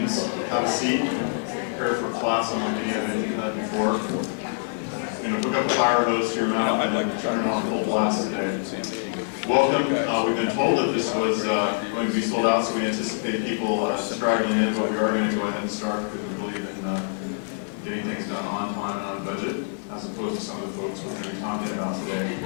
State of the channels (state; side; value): silent; right; digital silence